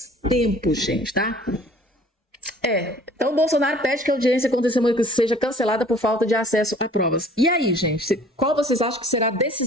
tempo, gente, tá? Então o Bolsonaro pede que a audiência com testemunha seja cancelada por falta de acesso a provas. E aí, gente, qual vocês acham que será a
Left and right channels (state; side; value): normal; both; correlation 0.52